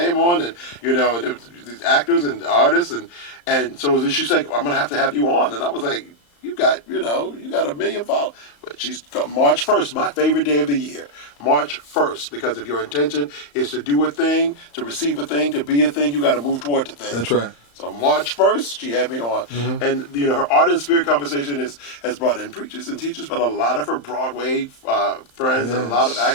on, and and there was these actors and artists, and so she's like, I'm gonna have to have you on, and I was like, you got a million followers. But she's March 1st, my favorite day of the year. March 1st, because if your intention is to do a thing, to receive a thing, to be a thing, you got to move toward the thing. That's right. So March 1st, she had me on. And, her art and spirit conversation has brought in preachers and teachers, but a lot of her Broadway friends and a lot of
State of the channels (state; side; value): late; right; 35 ms